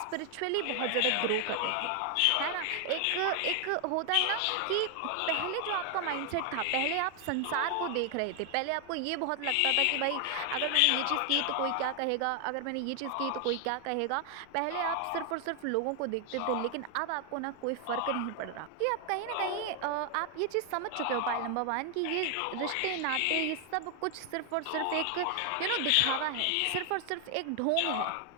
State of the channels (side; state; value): both; different; correlation 0.00